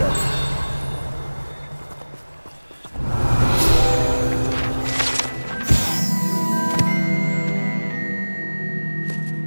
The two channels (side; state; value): both; inverted; correlation -1.00